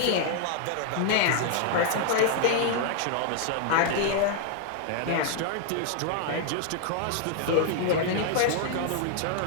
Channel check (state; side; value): different; both; correlation 0.00